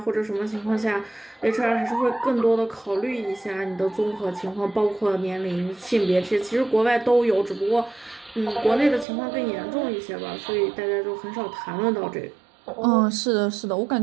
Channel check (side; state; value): left; drops out; at 9.1 s